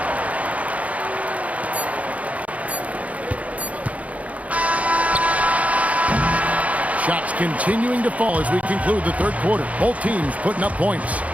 Shots continuing to fall as we conclude the third quarter. Both teams putting up points.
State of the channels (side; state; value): left; late; 0.068 ms